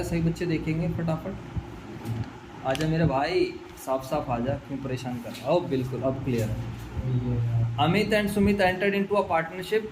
सभी बच्चे देखेंगे फटाफट। आजा मेरे भाई, साफ साफ आजा, क्यों परेशान कर रहा हो? बिल्कुल अब क्लियर है। Amit and Sumit entered into a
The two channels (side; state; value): both; identical; correlation 1.00